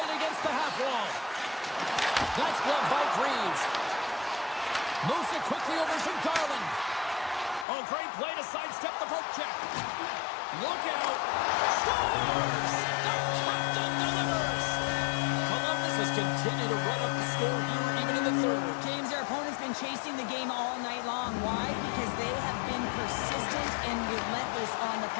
against the half wall. That's gloved by Greaves. Moves it quickly over to Garland. Oh, great play to sidestep the poke check. Look out. Scores! The captain delivers. Columbus has continued to run up the score here even in the third. James, their opponent's been chasing the game all night long. Why? Because they have been persistent and relentless on the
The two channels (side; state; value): right; drops out; at 7.7 s